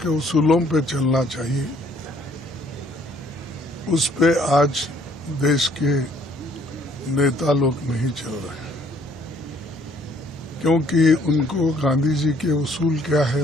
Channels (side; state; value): both; normal; correlation 0.61